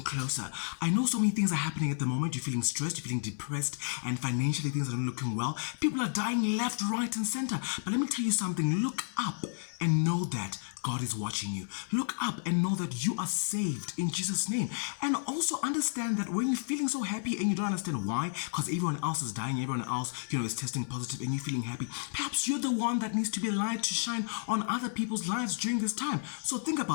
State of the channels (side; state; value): right; silent; 57 dB below the other